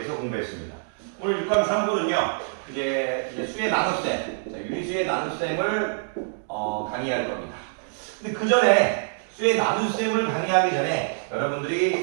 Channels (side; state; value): left; silent; digital silence